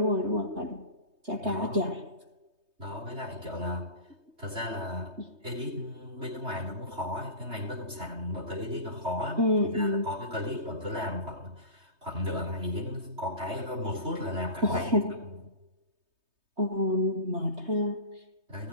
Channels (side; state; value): left; late; 3.2 ms